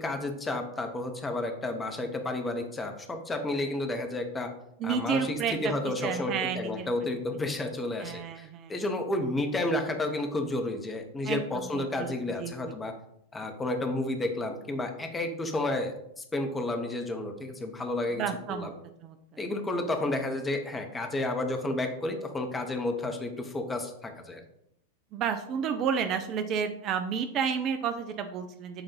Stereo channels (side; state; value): both; normal; correlation 0.52